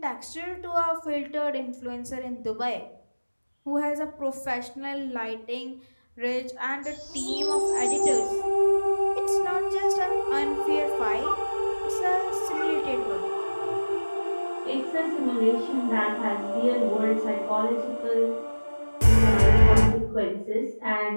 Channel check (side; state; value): both; inverted; correlation -1.00